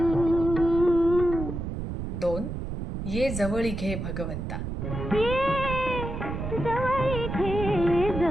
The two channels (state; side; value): noise; right; rumble, 5 dB below the sound